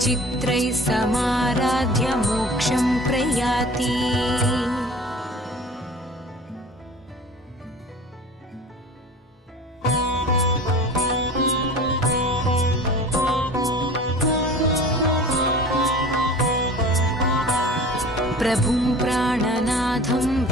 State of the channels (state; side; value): normal; both; correlation 0.41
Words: समाराध्य मोक्षं प्रयाति प्रभुं प्राणनाथं